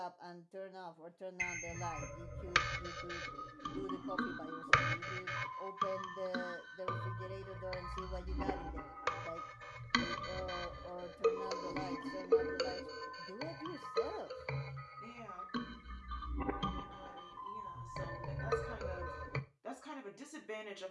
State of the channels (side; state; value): both; identical; correlation 1.00